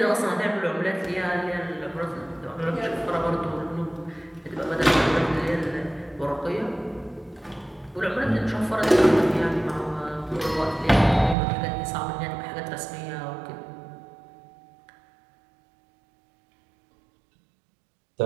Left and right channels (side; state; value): left; drops out; at 11.4 s